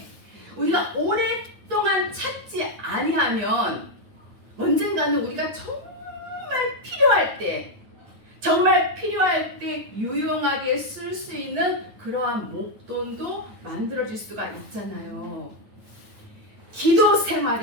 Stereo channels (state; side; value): late; left; 9.3 ms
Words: 우리가 오랫동안 찾지 아니하면 언젠가는 우리가 정말 필요할 때 유용하게 쓸 수 있는 그러한 목돈도 만들어질 수가 있잖아요. 기도